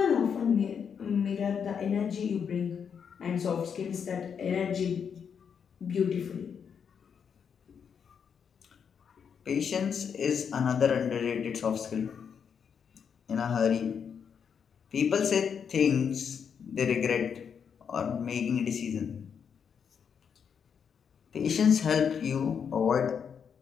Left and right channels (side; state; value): right; quieter; 7.1 dB